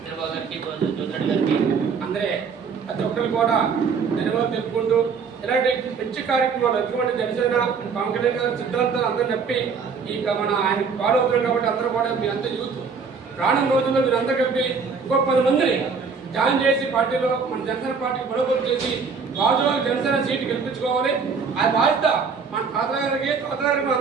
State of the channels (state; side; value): quieter; left; 5.5 dB